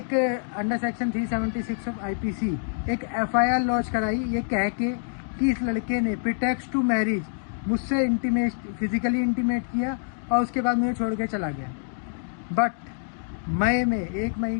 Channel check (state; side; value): silent; right; digital silence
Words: अंडर सेक्शन 376 ऑफ आईपीसी एक एफआईआर लॉन्च कराई, ये कह के कि इस लड़के ने प्रीटेक्स्ट टू मैरिज मुझसे फिजिकली इंटीमेट किया और उसके बाद मुझे छोड़ के चला गया। बट मई में 1